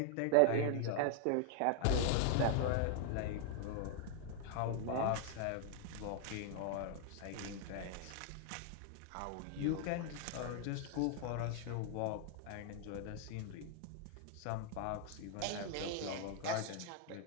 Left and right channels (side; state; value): both; different; correlation 0.00